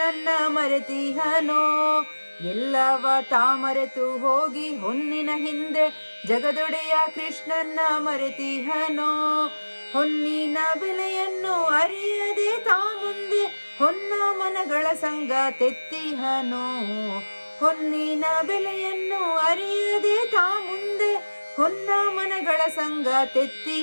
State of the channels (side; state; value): both; inverted; correlation -1.00